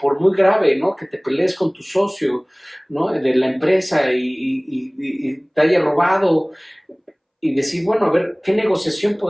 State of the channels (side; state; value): both; identical; correlation 1.00